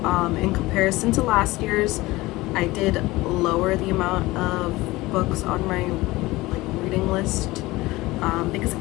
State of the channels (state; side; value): quieter; right; 19.8 dB